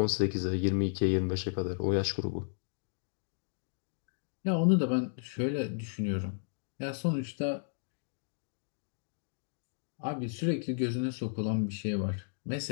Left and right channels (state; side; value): silent; right; digital silence